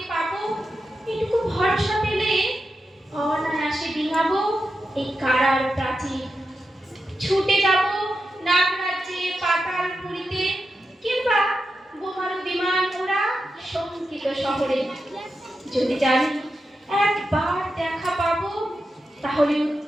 পাবো এটুকু ভরসা পেলে অনায়াসে ডিঙাবো এই কারার প্রাচীর। ছুটে যাব নাগরাজ্যে পাতালপুরীতে কিংবা বোমারু বিমান ওরা শঙ্কিত শহরে। যদি জানি একবার দেখা পাবো তাহলে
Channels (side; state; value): both; normal; correlation 0.89